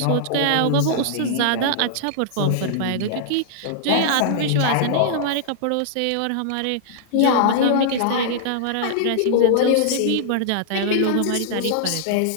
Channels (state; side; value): different; both; correlation -0.01